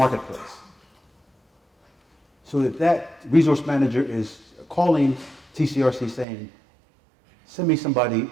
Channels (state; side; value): drops out; left; at 6.2 s